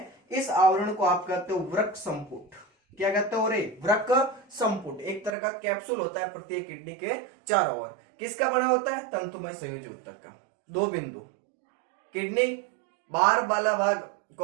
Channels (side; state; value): left; drops out; at 5.4 s